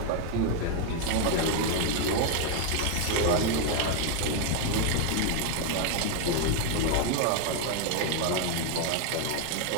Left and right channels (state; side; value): different; both; correlation 0.00